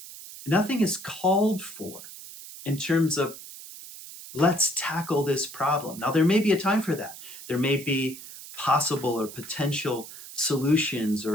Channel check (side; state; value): right; noise; hiss, 14 dB below the sound